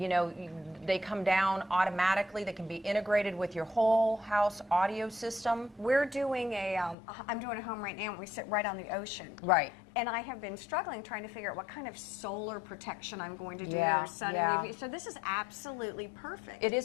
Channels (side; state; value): right; drops out; at 7.0 s